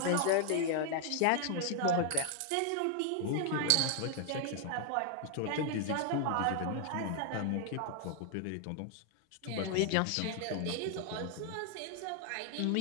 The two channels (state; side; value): different; both; correlation 0.00